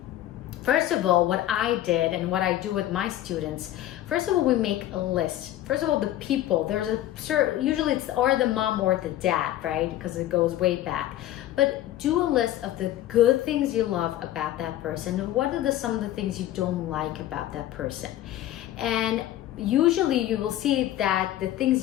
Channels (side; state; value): right; quieter; 13.6 dB